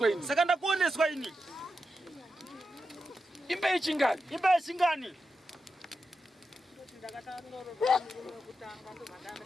ini. Saka ndakuoneswa ini. Imba yechingani. Imba yechingani.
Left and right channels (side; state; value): both; normal; correlation 0.88